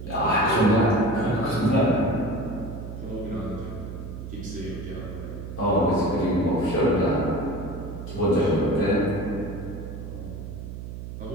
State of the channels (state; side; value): noise; right; hum, 9 dB below the sound